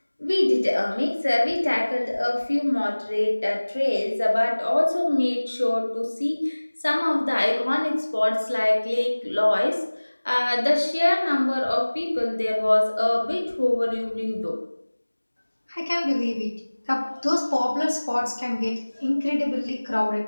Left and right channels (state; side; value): inverted; both; correlation -1.00